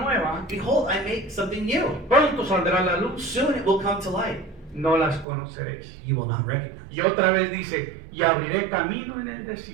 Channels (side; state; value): left; drops out; at 5.2 s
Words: Behold, I make something new. pronto saldrá la luz, Soon it will come to light. no las conoceréis. You will not recognize. Y otra vez dice, y abriré camino en el